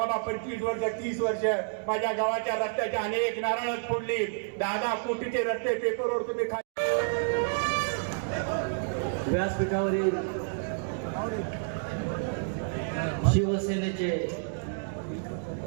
25 वर्ष 30 वर्ष माझ्या गावाच्या रस्त्याच्या अनेक नारळ फोडली, 10 कोटीचे रस्ते पेपरवर तुम्ही व्यासपीठावरील शिवसेनेचे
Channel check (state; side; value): silent; left; digital silence